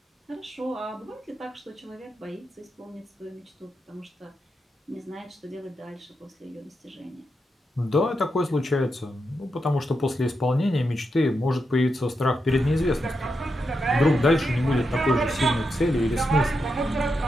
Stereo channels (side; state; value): both; normal; correlation 0.85